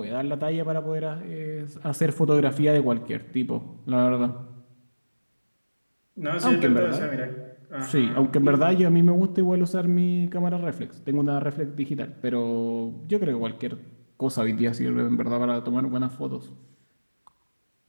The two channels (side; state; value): both; inverted; correlation -1.00